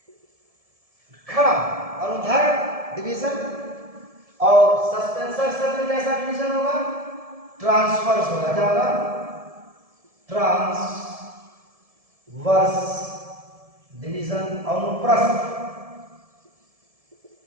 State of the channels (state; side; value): late; left; 1.7 ms